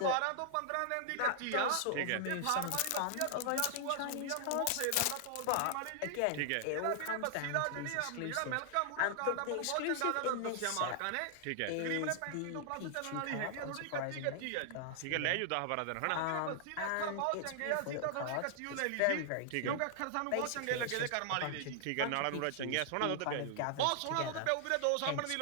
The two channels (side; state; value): both; different; correlation 0.00